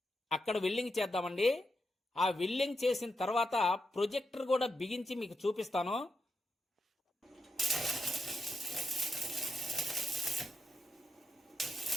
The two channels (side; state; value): both; normal; correlation 0.86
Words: అక్కడ వెల్డింగ్ చేద్దామండి. ఆ వెల్డింగ్ చేసిన తర్వాత ప్రొజెక్టర్ కూడా బిగించి మీకు చూపిస్తాను.